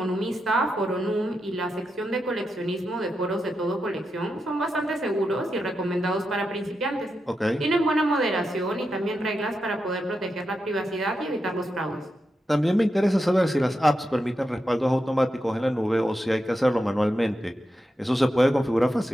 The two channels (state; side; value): normal; both; correlation 0.87